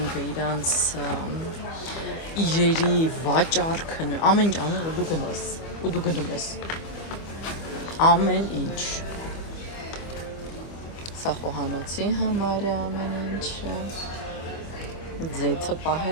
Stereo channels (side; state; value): right; late; 25 ms